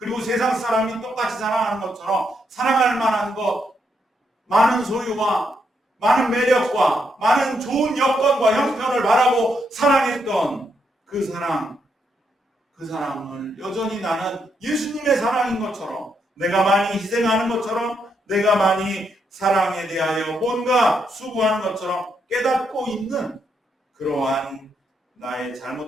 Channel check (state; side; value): normal; both; correlation 0.78